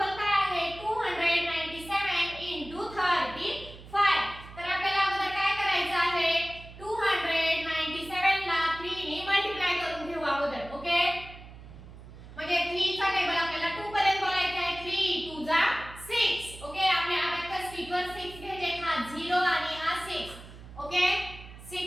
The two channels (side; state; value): right; noise; hum, 16 dB below the sound